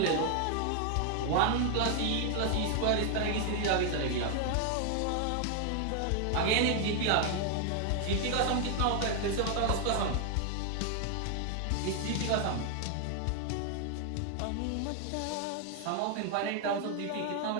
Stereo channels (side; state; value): both; different; correlation 0.00